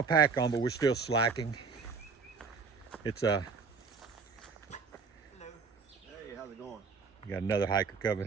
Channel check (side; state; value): left; quieter; 5.1 dB